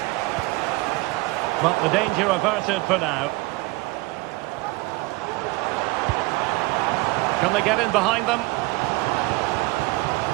But the danger averted for now. Can they get in behind them?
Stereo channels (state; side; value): quieter; left; 22.9 dB